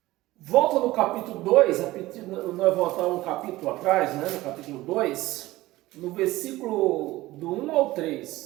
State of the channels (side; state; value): left; quieter; 17.9 dB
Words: Volta no capítulo 2, nós voltamos um capítulo atrás, né? No capítulo 2, no versículo do 1 ao